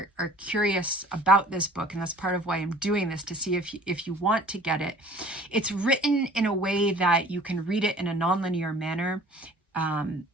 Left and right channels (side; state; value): both; normal; correlation 0.49